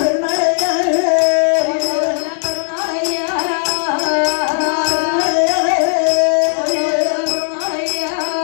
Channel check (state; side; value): silent; right; digital silence